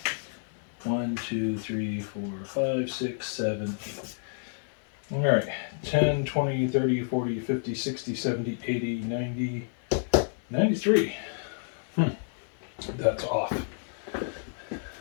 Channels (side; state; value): right; silent; digital silence